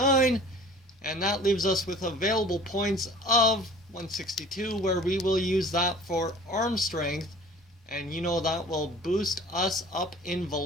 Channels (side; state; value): both; normal; correlation 0.45